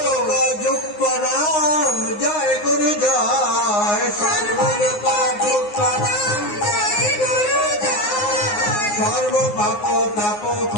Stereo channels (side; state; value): right; late; 9.6 ms